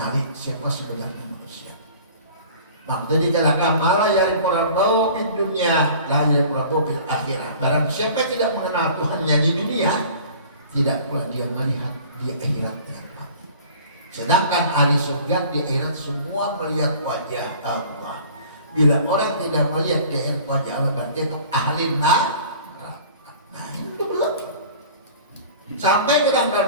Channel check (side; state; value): both; inverted; correlation -0.46